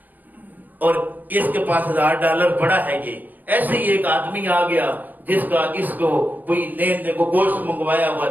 اور اس کے پاس $1000 پڑا ہے. یہ ایسے ہی ایک آدمی آ گیا جس کا اس کو کوئی لین دین کو گوشت منگوایا ہوا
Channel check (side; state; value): left; late; 0.086 ms